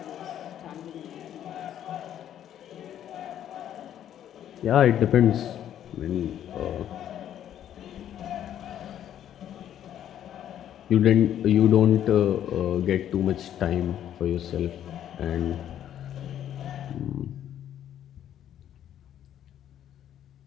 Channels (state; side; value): quieter; right; 10.7 dB